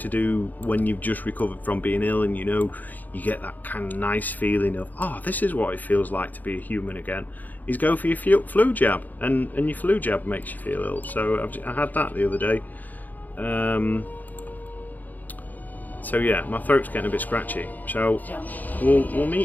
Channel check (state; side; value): late; right; 0.083 ms